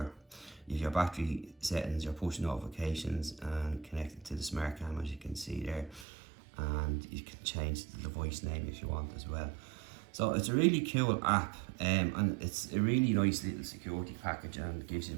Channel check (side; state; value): left; drops out; at 6.1 s